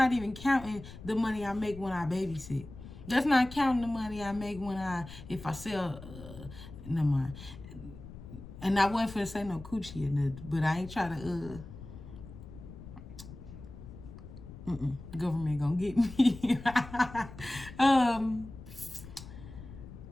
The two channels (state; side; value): noise; left; rumble, 14 dB below the sound